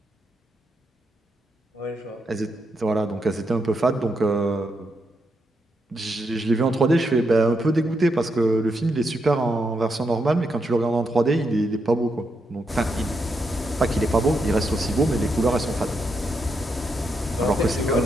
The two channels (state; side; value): normal; both; correlation 0.82